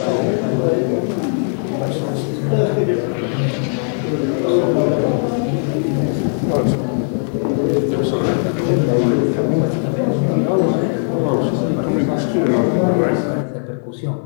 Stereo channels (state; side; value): silent; right; digital silence